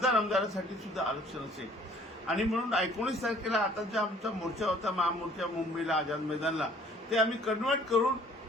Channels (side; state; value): both; normal; correlation 0.56